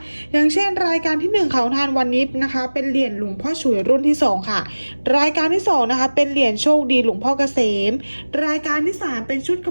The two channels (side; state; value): both; inverted; correlation -1.00